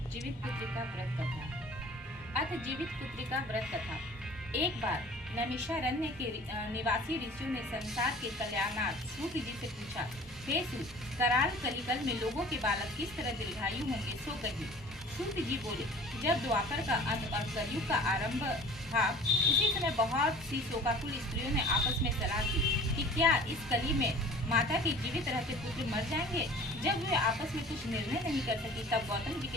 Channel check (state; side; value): normal; both; correlation 0.46